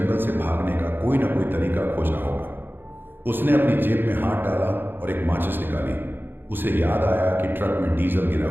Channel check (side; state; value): left; late; 0.098 ms